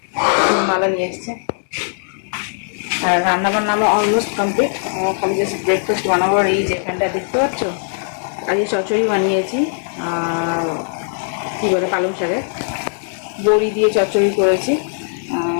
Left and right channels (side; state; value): right; silent; digital silence